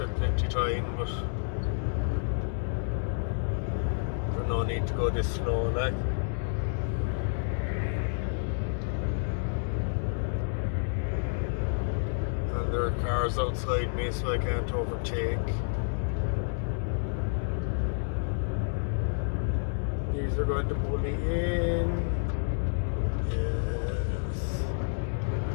plenty time, but there's no need to go this slow, like. And there are cars outside me, so I can't overtake. These are going to pull me in. Yes.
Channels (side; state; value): right; silent; digital silence